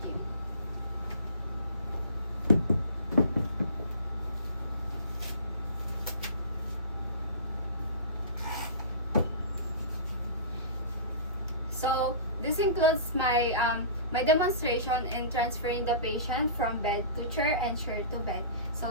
So this includes my demonstration in transferring the patient from bed to chair and chair to bed.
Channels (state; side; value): inverted; both; correlation -0.36